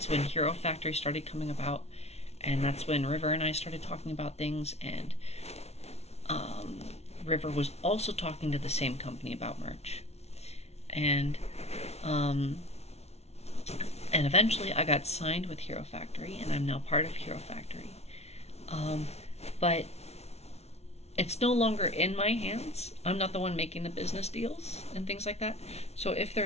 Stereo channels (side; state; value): right; late; 0.31 ms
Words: when Hero Factory started coming about, and that's when River and I started talking about things, and River was also talking to the same company about merch, and eventually I got signed with Hero Factory, and I'm now part of Hero Factory, but it's no longer in my hands. I'm not the one making the business deals and things like that. So if